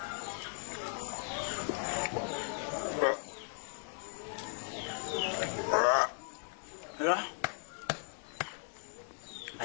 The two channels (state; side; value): silent; right; 53 dB below the other